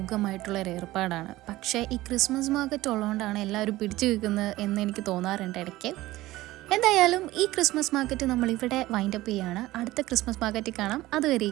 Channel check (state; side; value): quieter; left; 17.3 dB